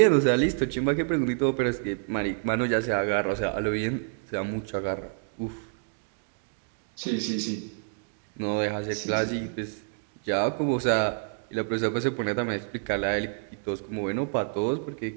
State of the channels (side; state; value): left; silent; digital silence